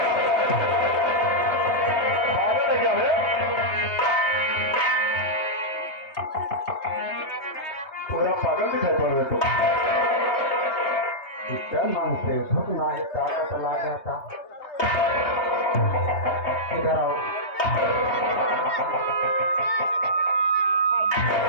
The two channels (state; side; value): late; right; 3.2 ms